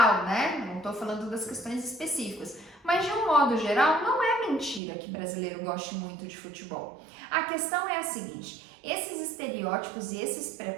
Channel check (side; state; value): left; drops out; at 4.8 s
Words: né? Não estou falando das questões específicas. Mas de um modo geral, não é mentira que brasileiro goste muito de futebol. A questão é a seguinte: esses estereótipos e esses